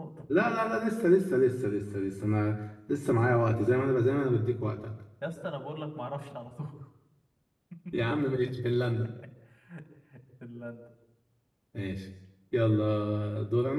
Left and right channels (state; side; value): identical; both; correlation 1.00